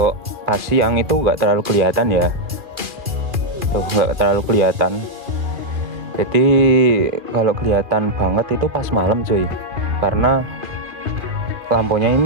pas siang itu nggak terlalu kelihatan ya, tuh nggak terlalu kelihatan. Jadi kalau kelihatan banget itu pas malam cuy, karena lampunya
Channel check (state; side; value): late; left; 2.4 ms